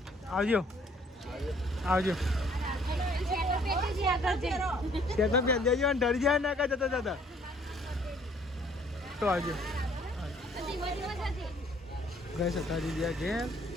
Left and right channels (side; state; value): both; normal; correlation 0.60